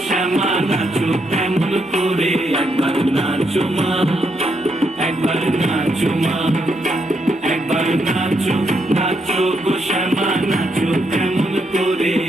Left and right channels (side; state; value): both; normal; correlation 0.78